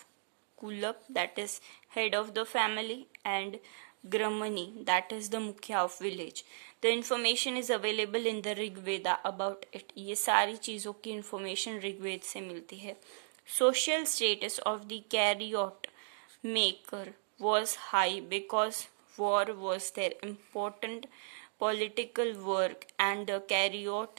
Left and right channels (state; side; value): silent; left; digital silence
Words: Kulap, that is head of the family, and Gramani, that is the मुखिया of village. The information is available in the Rig Veda about it. ये सारी चीज़ों की information ऋग्वेद से मिलती है. Social status of the chariot maker was high because war was their important political work and the